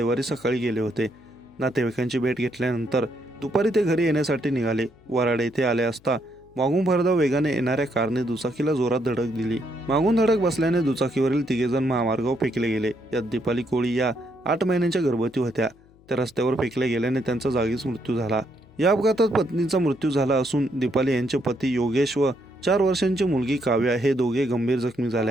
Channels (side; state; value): left; noise; hum, 28 dB below the sound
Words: सकाळी गेले होते. नातेवाईकांची भेट घेतल्यानंतर दुपारी ते घरी येण्यासाठी निघाले. वराड येथे आले असता मागून भरधाव वेगाने येणाऱ्या कारने दुचाकीला जोरात धडक दिली. मागून धडक बसल्याने दुचाकीवरील तिघेजण महामार्गावर फेकले गेले. यात दीपाली कोळी या 8 महिन्यांच्या गर्भवती होत्या. त्या रस्त्यावर फेकले गेल्याने त्यांचा जागीच मृत्यू झाला. या अपघातात पत्नीचा मृत्यू झाला असून दीपाली यांचे पती योगेश व 4 वर्षांची मुलगी काव्या हे दोघे गंभीर जखमी